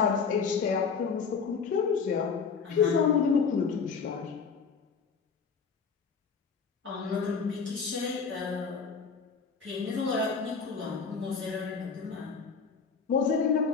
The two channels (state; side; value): quieter; right; 5.6 dB